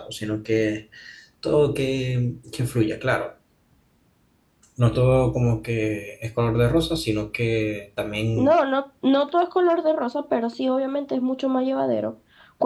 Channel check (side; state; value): both; identical; correlation 1.00